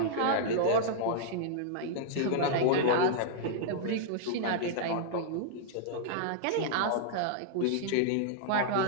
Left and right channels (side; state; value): both; different; correlation -0.01